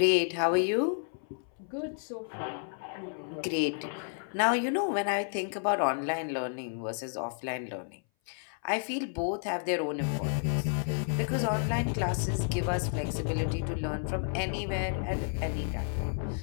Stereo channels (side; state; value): right; silent; 57 dB below the other